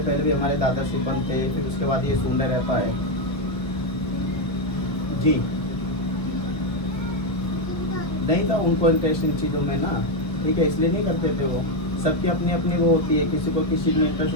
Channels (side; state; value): right; late; 1.0 ms